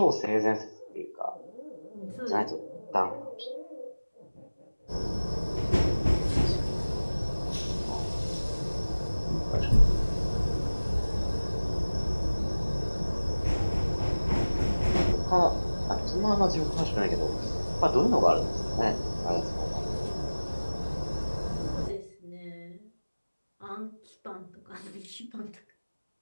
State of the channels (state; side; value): inverted; both; correlation -1.00